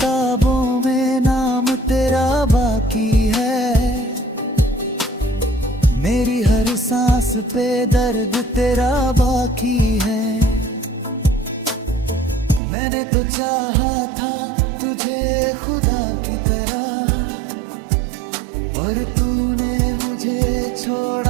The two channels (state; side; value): drops out; left; at 12.6 s